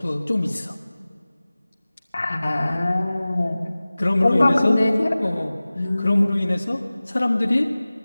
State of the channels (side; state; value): both; inverted; correlation -0.98